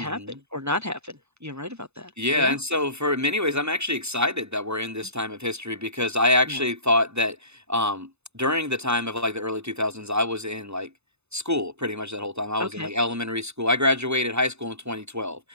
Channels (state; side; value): late; left; 0.80 ms